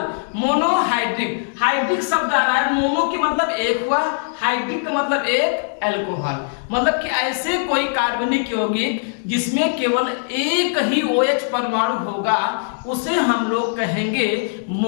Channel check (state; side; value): silent; right; digital silence